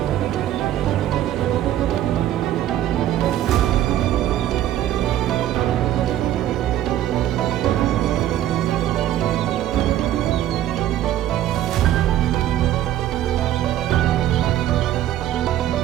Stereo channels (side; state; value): left; quieter; 12.4 dB